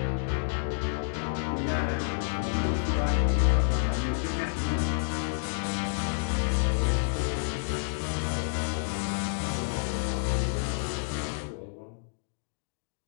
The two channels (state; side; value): silent; right; digital silence